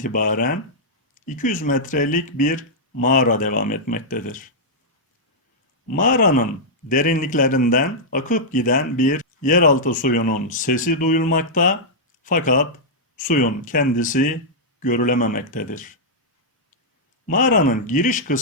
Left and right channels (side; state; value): both; normal; correlation -0.08